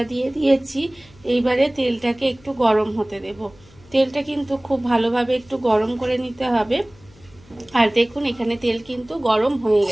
দিয়ে দিয়েছি। এইবারে তেলটাকে একটু গরম হতে দেব। তেলটা কিন্তু খুব ভালোভাবে একটু গরম করে নিতে হবে। আর দেখুন এখানে তেল কিন্তু গরম হয়ে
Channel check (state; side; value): noise; left; hum, 26 dB below the sound